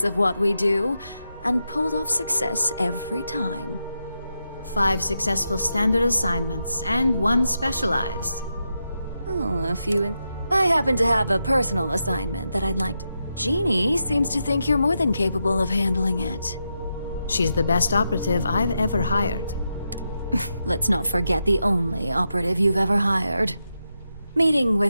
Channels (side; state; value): both; inverted; correlation -0.86